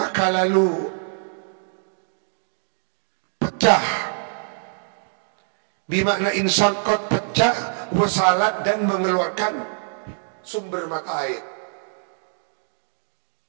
lalu pecah. Bimakna insangkot, pecah, wasalat, dan mengeluarkan sumber mata air.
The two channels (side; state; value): left; silent; digital silence